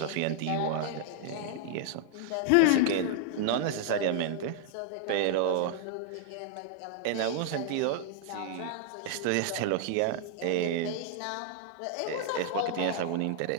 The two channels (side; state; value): both; different; correlation 0.00